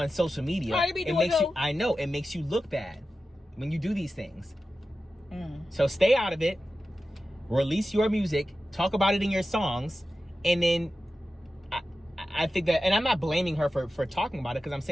social media. I know it makes you look bad when you do these things. So stay out of it. Release your music. Talk about it in your songs, and then I think that. And I'm not blaming her for talking about it because I'm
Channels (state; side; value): normal; both; correlation 0.93